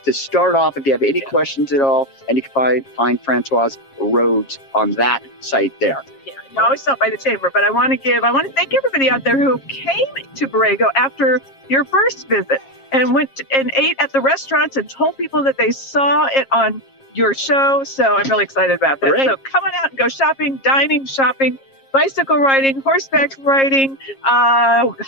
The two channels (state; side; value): late; right; 7.4 ms